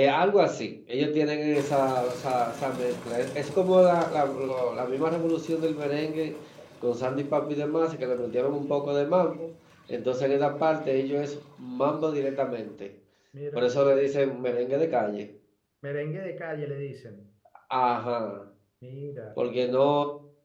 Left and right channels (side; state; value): both; identical; correlation 1.00